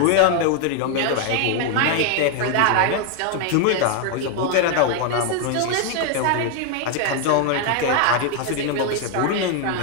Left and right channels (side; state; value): both; different; correlation 0.00